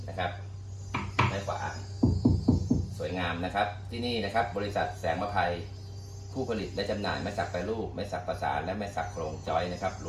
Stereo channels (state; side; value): identical; both; correlation 1.00